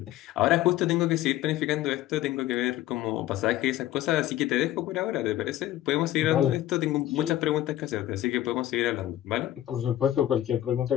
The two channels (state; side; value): quieter; right; 13.8 dB